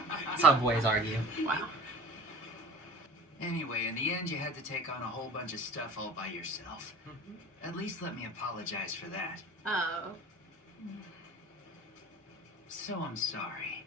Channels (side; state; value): both; normal; correlation 0.39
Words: That's how boys argue. Wow. Anyway, in the end, you had to take on a whole bunch of stuff all by yourself. At least let me apologize for that. Oh. So I'm sorry.